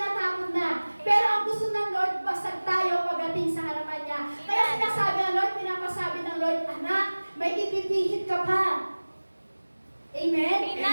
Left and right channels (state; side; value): inverted; both; correlation -1.00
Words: na. Pero ang gusto ng Lord, basag tayo pagdating sa harapan niya. Kaya sinasabi ng Lord, pinapasabi ng Lord, anak, may ipipihit ka pa. Amen? Amen.